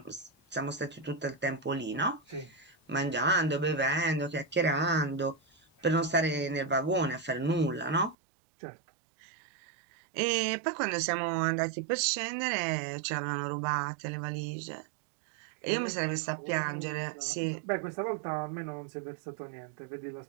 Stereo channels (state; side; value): drops out; left; at 8.2 s